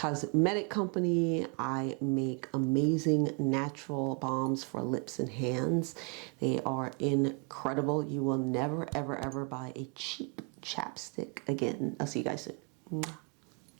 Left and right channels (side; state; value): left; quieter; 36.2 dB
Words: company. I make amazing natural balms for lips and hands. They are incredible. You will never, ever, ever buy a cheap chapstick again. I'll see you guys soon.